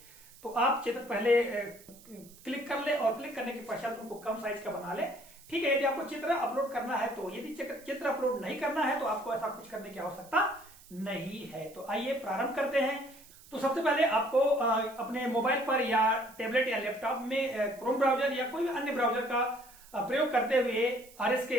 तो आप चित्र पहले क्लिक कर ले और क्लिक करने के पश्चात उनको कम साइज का बना ले। ठीक है, यदि आपको चित्र अपलोड करना है तो, यदि चित्र अपलोड नहीं करना है तो आपको ऐसा कुछ करने की आवश्यकता नहीं है। तो आइए प्रारंभ करते हैं। तो सबसे पहले आपको अपने मोबाइल पर या टैबलेट या लैपटॉप में क्रोम ब्राउजर या कोई भी अन्य ब्राउजर का प्रयोग करते हुए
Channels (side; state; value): right; noise; hiss, 22 dB below the sound